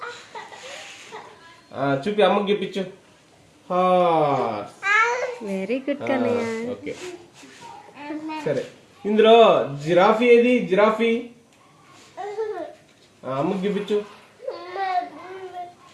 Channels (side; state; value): both; identical; correlation 1.00